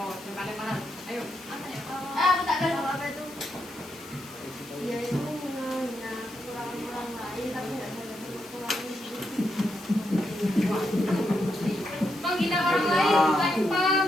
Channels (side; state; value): left; noise; hiss, 19 dB below the sound